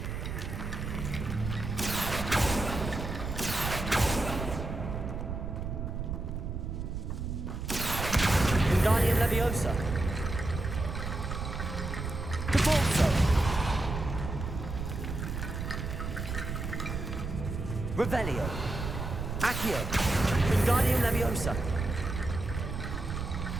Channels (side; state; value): right; noise; rumble, 5 dB below the sound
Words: Wingardium Leviosa. Devolso. Revelio. Accio. Wingardium Leviosa.